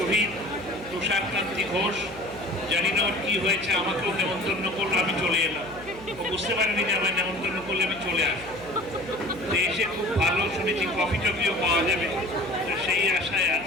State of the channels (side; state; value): left; noise; hum, 19 dB below the sound